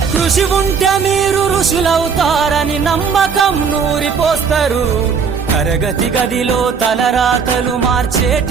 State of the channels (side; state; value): left; quieter; 6.1 dB